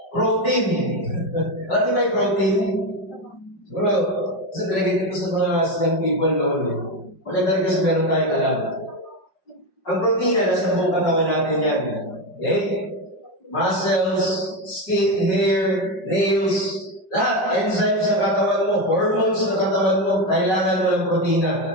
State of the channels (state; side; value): late; right; 5.6 ms